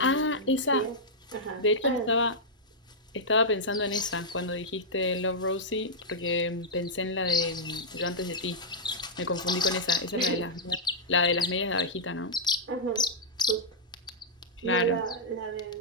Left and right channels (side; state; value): both; normal; correlation -0.08